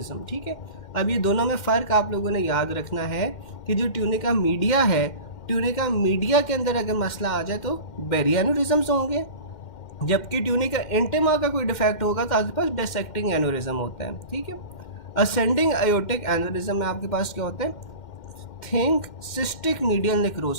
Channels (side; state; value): right; late; 2.1 ms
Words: ठीक है। अब ये दोनों में फ़र्क आप लोगों ने याद रखना है कि जो ट्यूनिका मीडिया है, ट्यूनिका मीडिया के अंदर अगर मसला आ जाए तो बेरी एन्यूरिज्म्स होंगे, जबकि ट्यूनिका इंटेमा का कोई डिफेक्ट होगा तो आपके पास डायसेक्टिंग एन्यूरिज्म होता है, ठीक है। असेंडिंग आयोटिक एन्यूरिज्म में आपके पास क्या होता है, थिंक सिस्टिक मीडियल